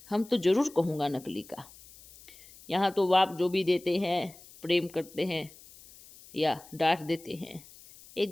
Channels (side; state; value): left; noise; hiss, 21 dB below the sound